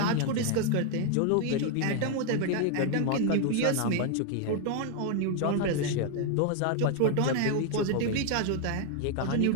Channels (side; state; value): both; different; correlation 0.01